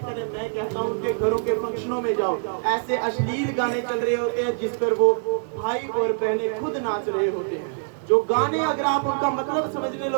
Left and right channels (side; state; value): left; silent; digital silence